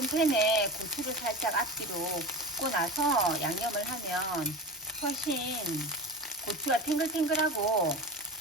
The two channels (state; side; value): normal; both; correlation 0.28